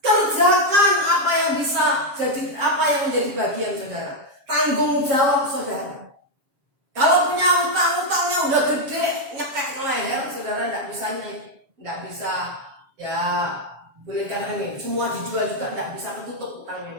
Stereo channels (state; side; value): late; left; 7.4 ms